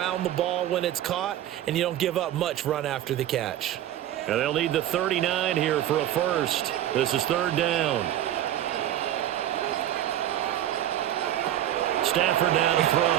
the ball when it's caught, and you don't give up much run after the catch. And they'll need the 39 here for a first. This is 3rd down. Stafford now to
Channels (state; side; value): quieter; left; 12.2 dB